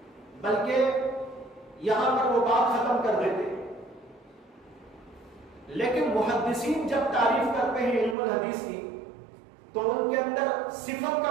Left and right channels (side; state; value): left; drops out; at 8.2 s